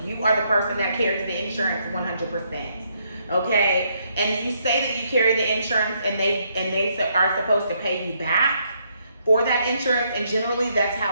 you are the person that carries the insurance 100%. Okay? And you say that you carry the insurance and they are supposed to pay you back for that insurance, and generally that's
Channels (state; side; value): inverted; both; correlation -0.74